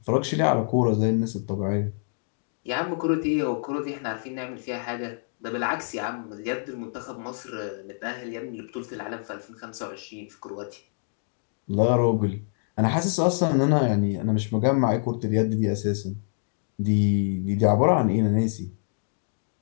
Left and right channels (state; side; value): silent; right; digital silence